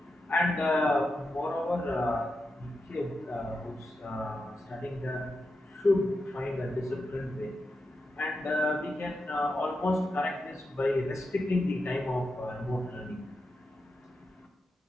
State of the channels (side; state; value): both; normal; correlation 0.88